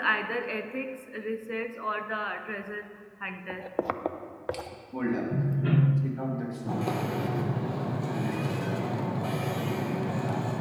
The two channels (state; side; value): identical; both; correlation 1.00